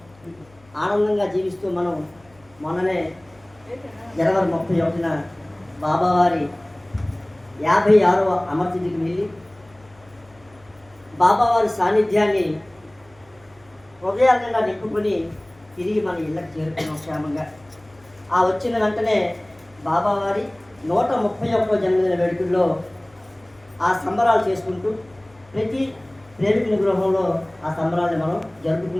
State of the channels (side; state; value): left; noise; hum, 29 dB below the sound